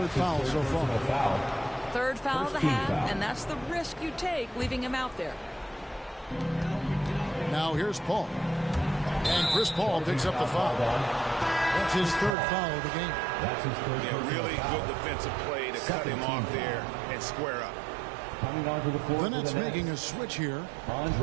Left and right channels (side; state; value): left; drops out; at 12.4 s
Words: foul so far. Third foul of the half, and that's the risk you take leaving him out there. Now here's Paul. And Chris Paul picks up the foul. That's his 3rd foul of the game. That's his 3rd. Yeah, really good defensive play to cut him off there and square up. Coming onto the floor. The Nets making a switch here.